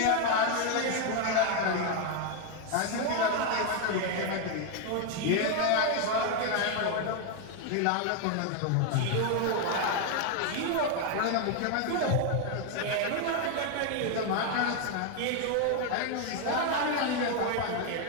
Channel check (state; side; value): different; both; correlation 0.01